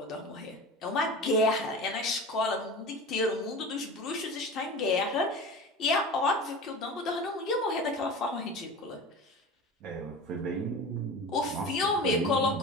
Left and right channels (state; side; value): normal; both; correlation 0.33